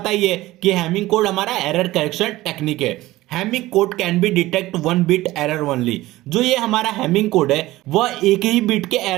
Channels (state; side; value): quieter; left; 17.4 dB